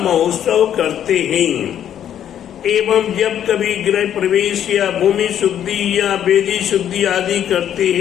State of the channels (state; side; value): quieter; right; 10.0 dB